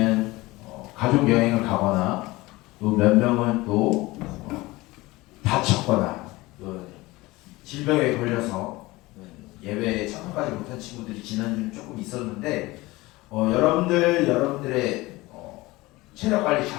가족 여행을 가거나 또 몇 명은 또 다쳤거나 또 질병에 걸려서 예배에 참석하지 못한 친구들이 지난주는 조금 있었는데 여러분들의 체력 관리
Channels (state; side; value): quieter; right; 20.6 dB